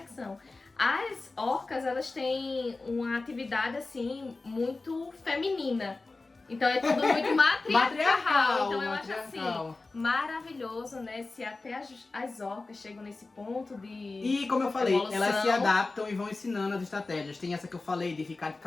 As orcas, elas têm uma atividade assim muito feminina. Então é tudo muito matriarcal. Então eu acho assim maravilhoso, né? Se até as orcas chegam nesse ponto de E como eu falei, evolução. elas se adaptam e vão ensinando as estratégias. Tem essa que eu falei de ficar de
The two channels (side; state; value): right; quieter; 3.5 dB